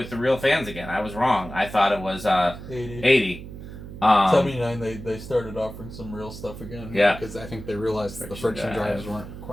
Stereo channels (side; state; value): right; noise; hum, 12 dB below the sound